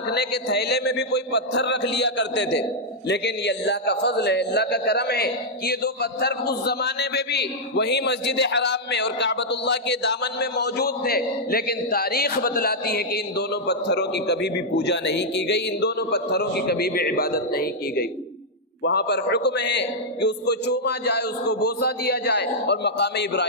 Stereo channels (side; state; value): both; normal; correlation -0.05